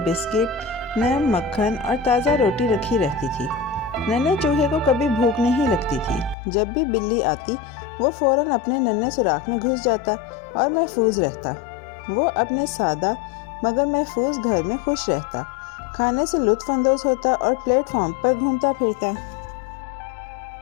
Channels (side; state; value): right; drops out; at 6.4 s